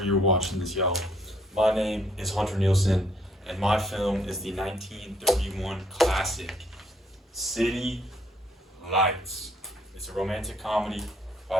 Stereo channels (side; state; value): both; normal; correlation 0.67